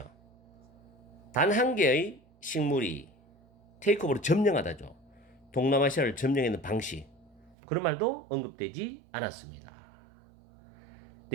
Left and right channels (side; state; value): left; drops out; at 7.6 s